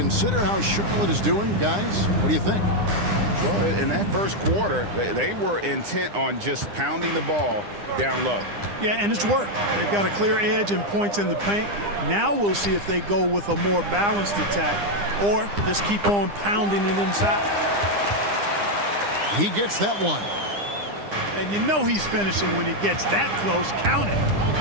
how Charlotte is doing, guys, what do you think? Well, in that first quarter, they were intent on just pounding the ball down low. Yeah, and it's worked. They've got a clear edge and points in the paint. Now we'll see if they go with a more balanced attack or just keep on pounding it inside. He gets that one. And you know he's finishing when he gets that close. Count it.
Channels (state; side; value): late; left; 9.9 ms